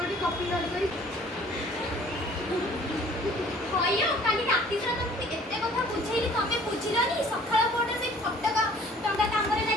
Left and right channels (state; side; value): normal; both; correlation 0.53